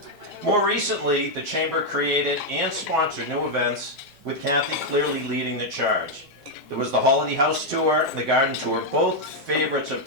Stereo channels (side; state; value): both; normal; correlation 0.00